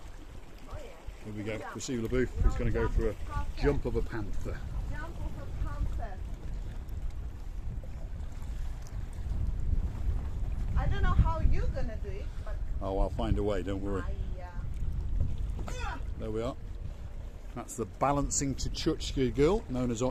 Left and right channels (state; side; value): identical; both; correlation 1.00